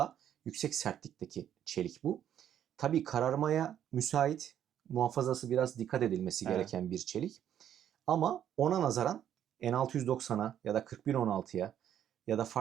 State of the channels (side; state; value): left; quieter; 10.2 dB